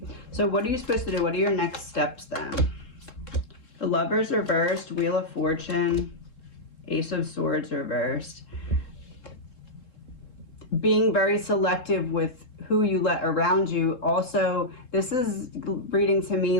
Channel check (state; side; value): late; right; 3.7 ms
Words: So what are you supposed to do? What are your next steps then? The Lovers reversed, Wheel of Fortune, Ace of Swords reversed. Being very selective with who you let around you. Also, this is reading to